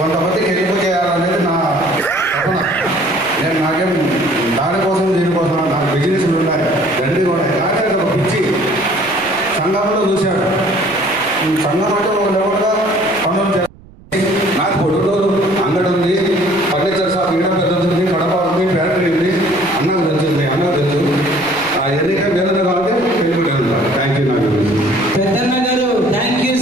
హెల్ప్ చేయాలనేది నా తపన. నేను నాకేం దానికోసం దీనికోసం నాకు బిజినెస్లు ఉన్నాయి, తండ్రి కూడా. కానీ అది ఒక పిచ్చి సంఘంలో చూశాడు. సంఘం అంటే ఒక లెవెల్గా పనులు చేయాలి. నాకు పొడుగురు అంగడి ఉంది, ఫర్నిచర్ షాప్ ఈడ పెద్దది, కడప ఉంది, ఫ్యాక్టరీ ఉంది. అన్నకు తెలుస్తుంది, అన్నకు తెలుసు. ఎన్నిక వేరే కాబట్టి పెళ్ళిపోయింది. Thank you. నాకు పెద్దన్న గారు thank you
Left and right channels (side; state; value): right; noise; rumble, 23 dB below the sound